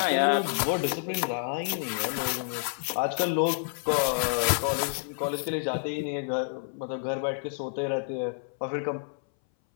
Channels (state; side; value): silent; right; 58 dB below the other